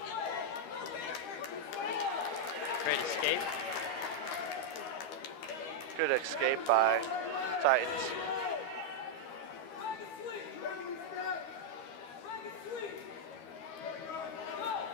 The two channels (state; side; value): late; right; 13 ms